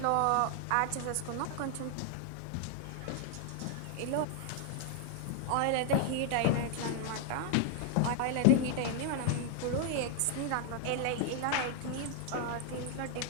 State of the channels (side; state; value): both; different; correlation 0.00